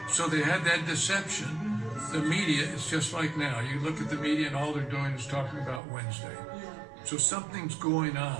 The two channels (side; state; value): left; drops out; at 5.8 s